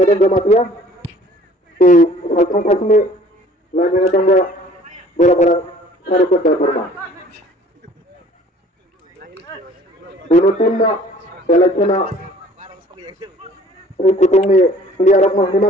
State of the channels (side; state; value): both; normal; correlation 0.53